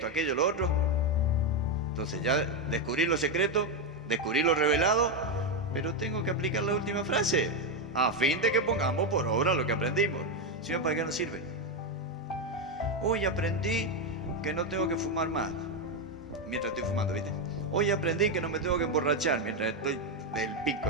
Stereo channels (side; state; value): both; normal; correlation 0.06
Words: aquello, lo otro. Entonces ya descubrí lo secreto, descubrí lo revelado, pero tengo que aplicar la última frase, a fin de que pongamos por obra lo que aprendimos. Si no, ¿para qué nos sirve? Hoy aprendí que no tengo que fumar más, mientras estoy fumando, ¿viste? Hoy aprendí que no me tengo que emborrachar, mientras estoy del